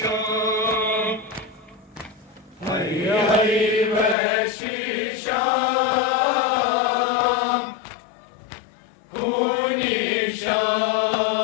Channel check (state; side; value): drops out; right; at 4.2 s